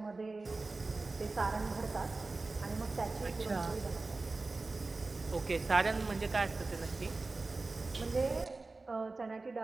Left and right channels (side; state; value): left; quieter; 3.6 dB